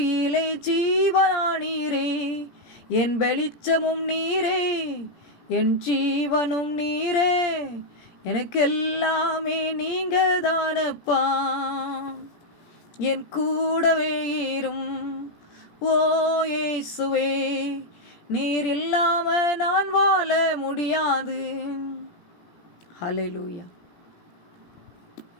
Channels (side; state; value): right; late; 17 ms